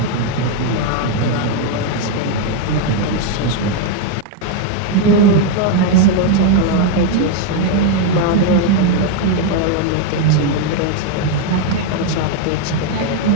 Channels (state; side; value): different; both; correlation 0.01